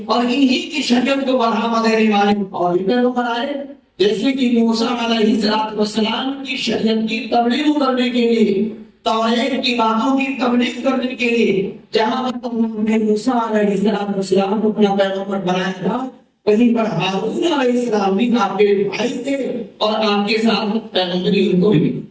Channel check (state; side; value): identical; both; correlation 1.00